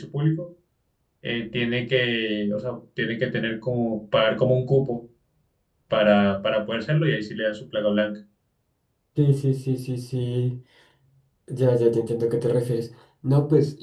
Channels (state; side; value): identical; both; correlation 1.00